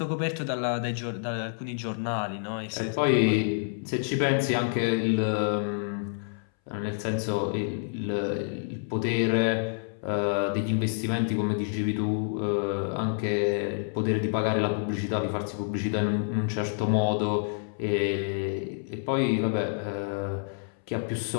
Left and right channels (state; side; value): silent; right; 59 dB below the other